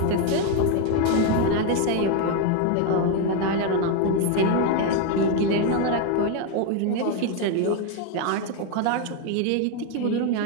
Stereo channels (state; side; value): different; both; correlation 0.01